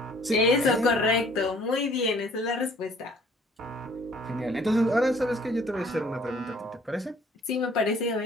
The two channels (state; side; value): normal; both; correlation 0.57